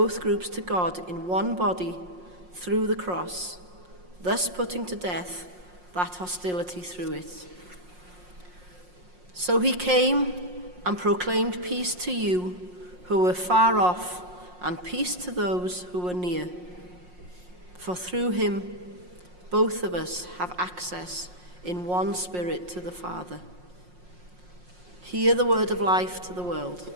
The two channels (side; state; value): left; late; 5.6 ms